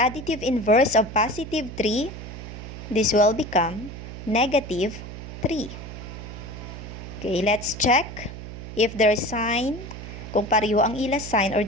inverse of positive 3. This will become negative 3. Okay, let's check. if their sign, kung pareho ang ila sign or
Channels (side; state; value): right; noise; hum, 11 dB below the sound